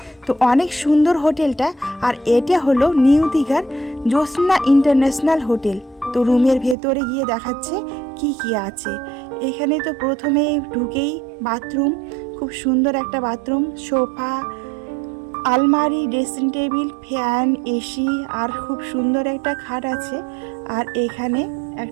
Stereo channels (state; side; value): drops out; left; at 6.8 s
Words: তো অনেক সুন্দর হোটেলটা, আর এটা হলো নিউ দীঘার জ্যোৎস্না ইন্টারন্যাশনাল হোটেল। তো রুমের ভেতরে গিয়ে দেখাচ্ছে কি কি আছে। এখানে তো প্রথমে ঢুকেই বাথরুম, খুব সুন্দর একটা বাথরুম, সোফা, আলমারি, ড্রেসিং টেবিল, ফ্যান, এসি, আর খুব সুন্দর একটা খাট আছে। আর এখানে